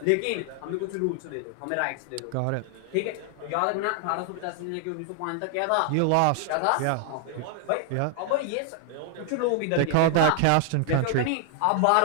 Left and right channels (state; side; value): different; both; correlation 0.00